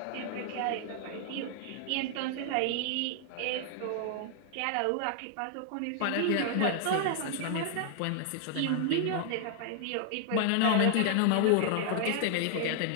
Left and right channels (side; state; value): both; different; correlation 0.00